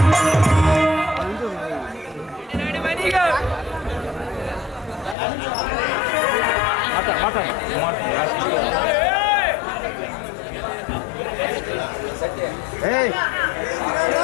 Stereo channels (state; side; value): drops out; right; at 5.2 s